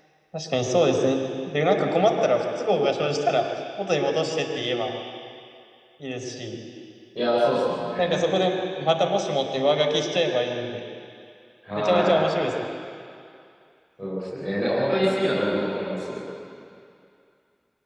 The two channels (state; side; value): identical; both; correlation 1.00